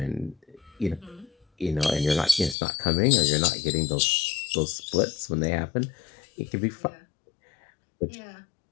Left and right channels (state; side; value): drops out; right; at 2.6 s